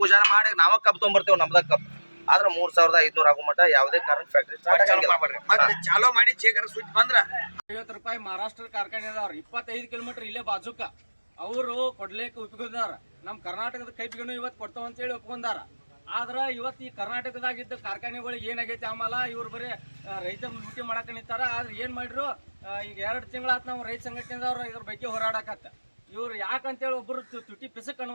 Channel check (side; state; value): both; inverted; correlation -1.00